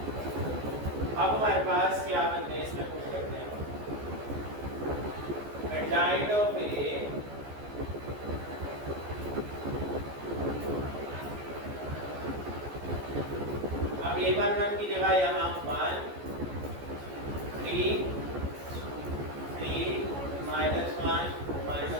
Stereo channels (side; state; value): left; late; 14 ms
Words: अब हमारे पास क्या बनते हैं, इसमें कुछ करते हैं, एडजाइंट ऑफ ए अब a11 की जगह यहाँ 1 3 3 -1